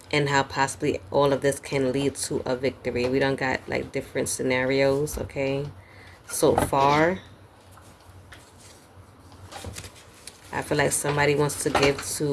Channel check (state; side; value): identical; both; correlation 1.00